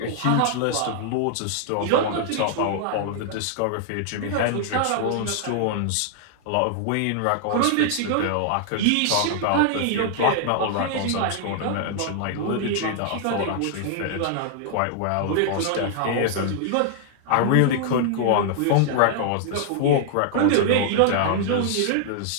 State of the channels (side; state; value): both; different; correlation -0.01